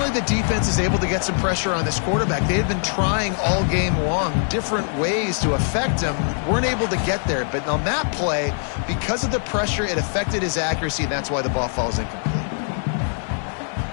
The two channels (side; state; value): right; silent; 58 dB below the other